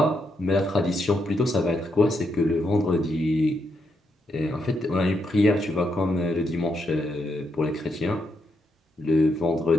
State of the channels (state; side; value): normal; both; correlation 0.80